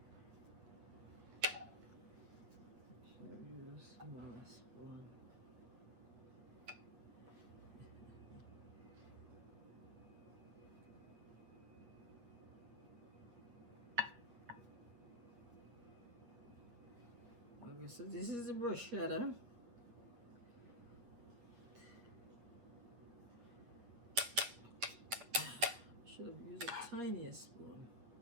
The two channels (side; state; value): left; late; 8.9 ms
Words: Smallest one. Okay, so this is the bruschetta. Should have used a tinier spoon.